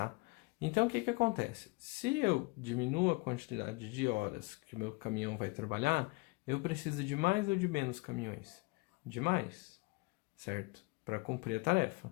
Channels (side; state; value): right; quieter; 26.4 dB